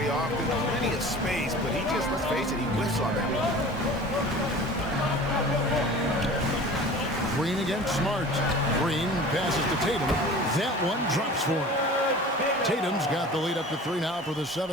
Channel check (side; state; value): both; normal; correlation 0.41